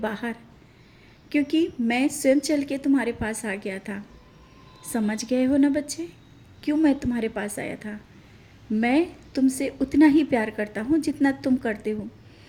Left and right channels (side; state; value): both; identical; correlation 1.00